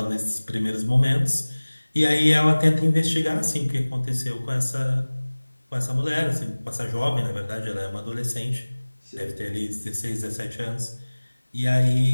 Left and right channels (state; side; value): inverted; both; correlation -1.00